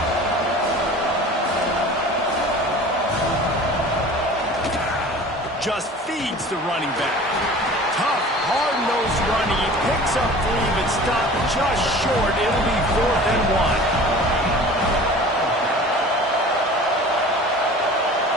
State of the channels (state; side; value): normal; both; correlation 0.42